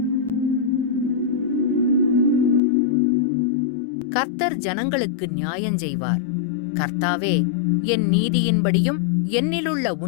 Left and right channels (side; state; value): right; drops out; at 2.6 s